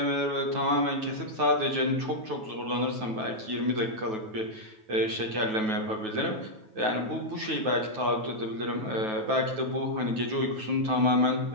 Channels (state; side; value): late; left; 9.3 ms